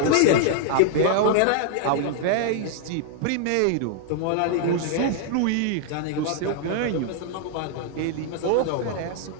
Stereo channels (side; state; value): both; different; correlation 0.00